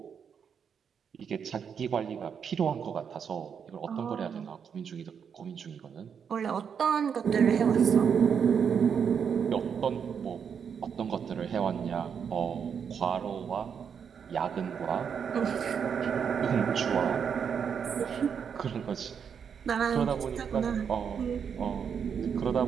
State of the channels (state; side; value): quieter; left; 7.2 dB